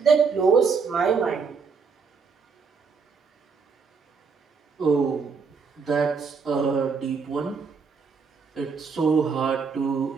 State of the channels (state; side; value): quieter; left; 5.3 dB